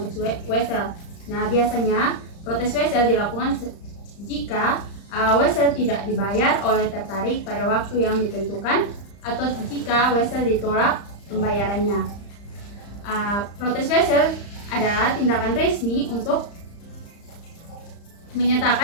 wesel. Nah, biasanya protes wesel dilakukan jika wesel tidak dibayar oleh tertarik pada waktu yang ditentukan atau jika wesel ditolak pembayarannya. Protes wesel adalah tindakan resmi untuk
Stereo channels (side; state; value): right; late; 35 ms